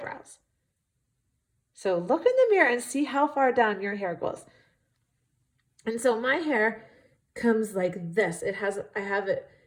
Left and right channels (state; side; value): identical; both; correlation 1.00